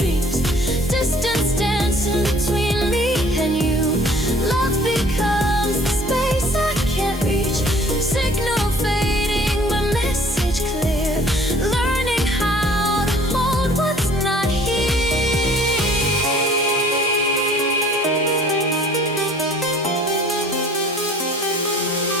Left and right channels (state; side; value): normal; both; correlation 0.53